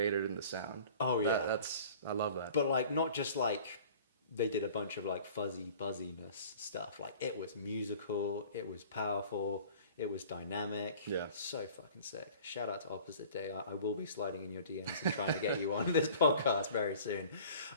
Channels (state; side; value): inverted; both; correlation -0.47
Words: in the sound. I love that. But like not just like they did a bunch of like fuzzy buzziness stuff. Like it was musical, it was powerful, it was dynamic. So fucking sick. Shout out to Opposite Day. I will be sliding in your DMs and trying to get you on this podcast very soon.